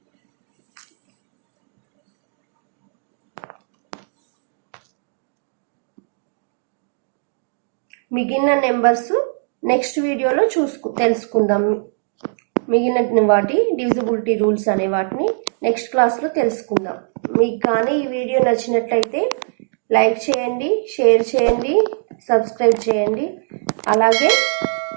మిగిలిన నెంబర్స్ నెక్స్ట్ వీడియోలో తెలుసుకుందాం. మిగిలిన వాటి డివిజిబిలిటీ రూల్స్ అనే వాటిని నెక్స్ట్ క్లాస్లో తెలుసుకుందాం. మీకు కానీ ఈ వీడియో నచ్చినట్లయితే లైక్ చేయండి, షేర్ చేయండి, సబ్స్క్రైబ్ చేయండి. అలాగే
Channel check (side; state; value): left; silent; digital silence